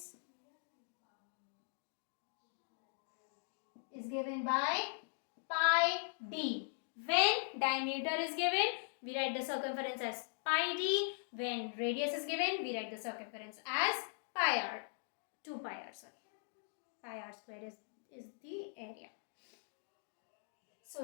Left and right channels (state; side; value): silent; right; digital silence